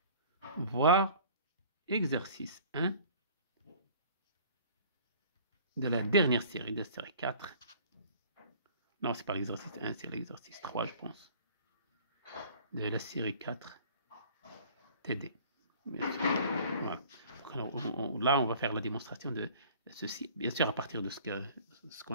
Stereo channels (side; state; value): both; inverted; correlation -0.49